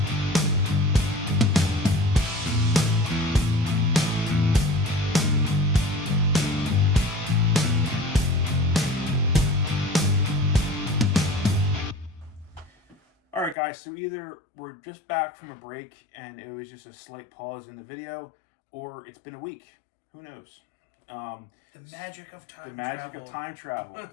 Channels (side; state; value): right; drops out; at 13.6 s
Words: Alright guys, so either we're just back from a break and it was just a slight pause in the video, or it's been a week. Who knows? The magic of time travel. The magic of time travel.